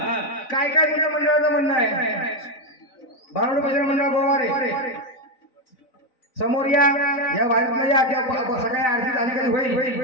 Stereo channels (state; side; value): late; right; 4.0 ms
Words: काय काय तुझ्या मंडळाचं म्हणणं आहे भारुड भजन मंडळ गोवारे समोर या वारीतल्या या सकाळी आरती झाली कधी